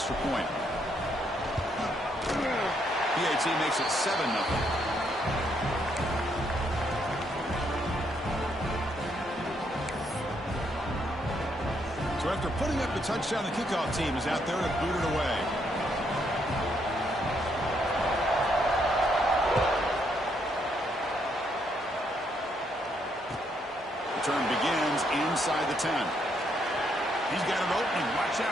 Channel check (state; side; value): normal; both; correlation 0.74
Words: point. PAT makes it 7-0. So after putting up the touchdown, the kickoff team is out there to boot it away. Return begins inside the 10. He's got an opening. Watch